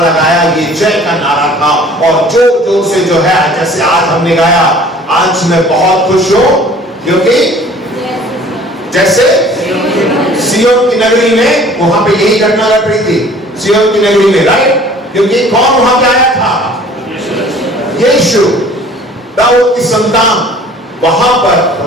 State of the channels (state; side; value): normal; both; correlation 0.50